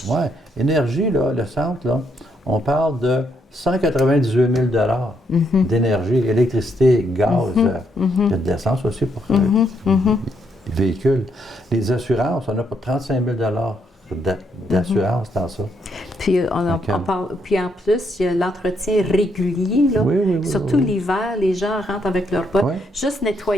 Oui, énergie, là, le centre, là, on parle de 198 000 d'énergie, électricité, gaz, il y a de l'essence aussi pour les véhicules. Les assurances, on a pour 35 000 d'assurance dans ça. Puis, Donc, puis en plus, il y a l'entretien régulier. Là. Oui, Surtout oui. l'hiver, les gens rentrent avec leurs bottes. Oui. Juste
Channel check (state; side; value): normal; both; correlation 0.75